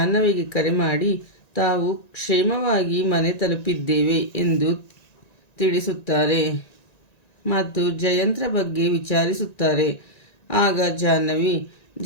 ಕರೆ ಮಾಡಿ ತಾವು ಕ್ಷೇಮವಾಗಿ ಮನೆ ತಲುಪಿದ್ದೇವೆ ಎಂದು ತಿಳಿಸುತ್ತಾರೆ ಮತ್ತು ಜಯಂತ್ರ ಬಗ್ಗೆ ವಿಚಾರಿಸುತ್ತಾರೆ. ಆಗ ಜಾಹ್ನವಿ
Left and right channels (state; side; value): late; right; 1.9 ms